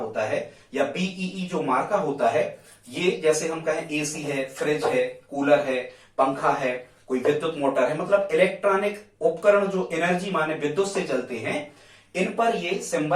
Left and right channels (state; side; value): identical; both; correlation 1.00